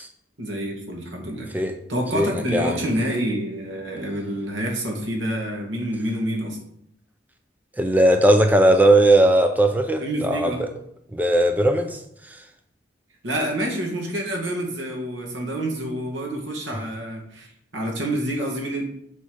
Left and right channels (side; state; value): both; normal; correlation 0.72